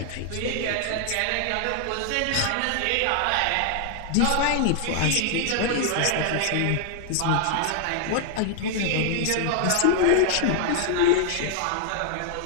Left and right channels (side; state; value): both; different; correlation 0.00